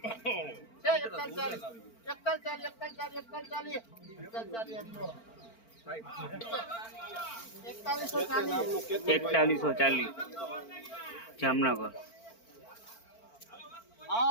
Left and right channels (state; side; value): late; right; 4.4 ms